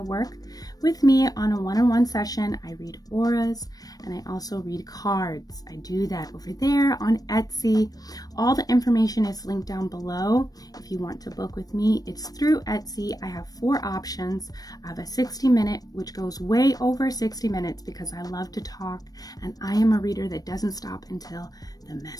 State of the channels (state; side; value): late; right; 0.18 ms